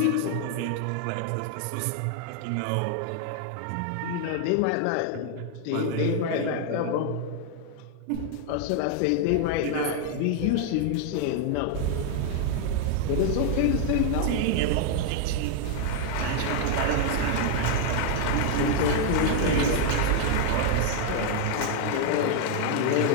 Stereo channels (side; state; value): both; different; correlation 0.00